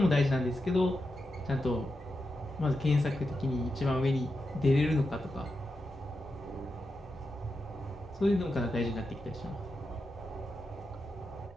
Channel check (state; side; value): normal; both; correlation 0.88